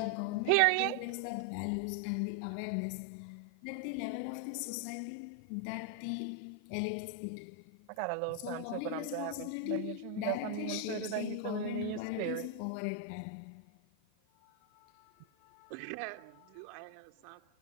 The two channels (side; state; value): both; different; correlation 0.00